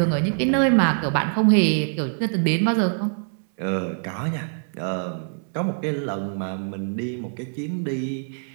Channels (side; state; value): left; silent; digital silence